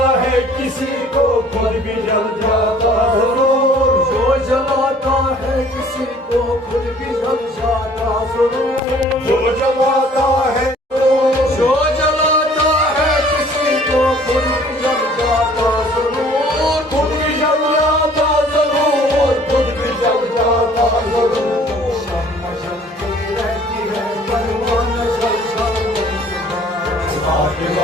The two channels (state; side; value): normal; both; correlation 0.54